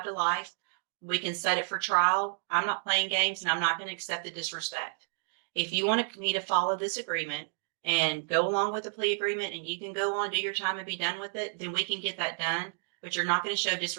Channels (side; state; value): left; silent; digital silence